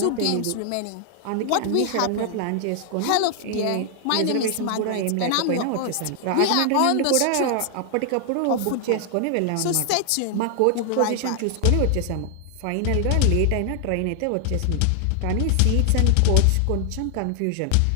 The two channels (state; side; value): different; both; correlation 0.00